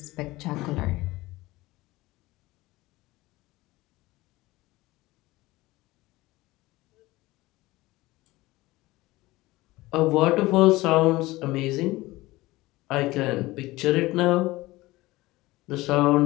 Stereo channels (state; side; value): quieter; right; 19.4 dB